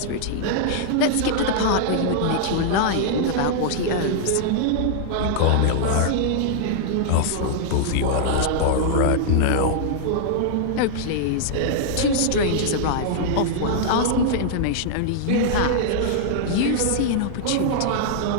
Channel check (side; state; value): both; different; correlation -0.01